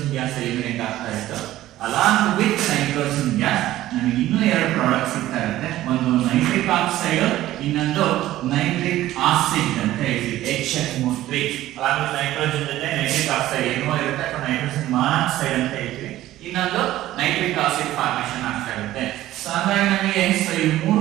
ಗ್ಯಾಸ್ ಎಲಿಮಿನೇಟ್ ಆಗ್ತಾ ಇತ್ತು. ಅಲಾಂಗ್ ವಿತ್ ನೈಟ್ರೋಜನ್ ಗ್ಯಾಸ್ ನಮಗೆ ಇನ್ನೂ ಎರಡು ಪ್ರಾಡಕ್ಟ್ಸ್ ಸಿಗ್ತಾ ಇರುತ್ತೆ. ಒಂದು ನೈಟ್ರಿಕ್ ಆಕ್ಸೈಡ್, ಇನ್ನೊಂದು ನೈಟ್ರಿಕ್ ಆಸಿಡ್ ಅಂತ ಹೇಳ್ತೀವಿ HF3. ಅಲಾಂಗ್ ವಿತ್ ನೈಟ್ರೋಜನ್ ಜೊತೆ ನೈಟ್ರಿಕ್ ಆಕ್ಸೈಡ್ ಏನೋ ಇರುತ್ತೆ ಅಥವಾ ನೈಟ್ರೋಜನ್ ಮಾನಾಕ್ಸೈಡ್ ಅಂತ ಹೇಳ್ತೀವಿ. ಇನ್ನೊಂದು ನೈಟ್ರಿಕ್ ಆಸಿಡ್ ಫಾರ್ಮೇಷನ್ ಆಗ್ತಾ ಇರುತ್ತೆ. ಸೊ ಹಾಗಾಗಿ ನಮಗೆ ಈ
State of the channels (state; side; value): quieter; left; 14.7 dB